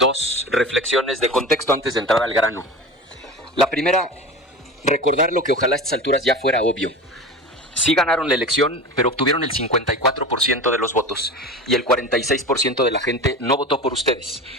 reflexiones de contexto antes de entrar al grano. La primera, recordar lo que ojalá a estas alturas ya fuera obvio. Sí ganaron la elección, pero obtuvieron el 54% de los votos y el 46% de la gente no votó por ustedes.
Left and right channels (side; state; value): both; normal; correlation 0.31